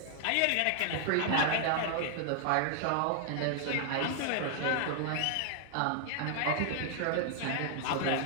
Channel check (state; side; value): different; both; correlation 0.00